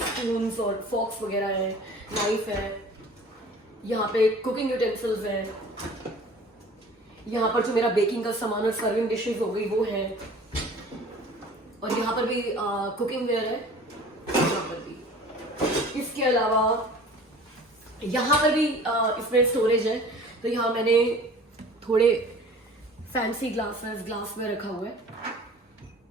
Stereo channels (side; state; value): both; normal; correlation 0.45